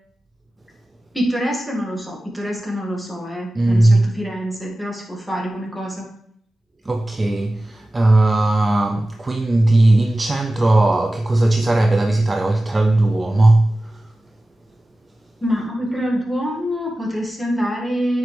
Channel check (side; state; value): both; normal; correlation 0.96